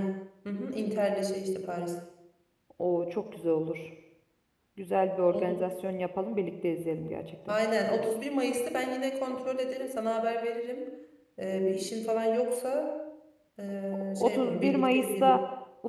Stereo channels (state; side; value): identical; both; correlation 1.00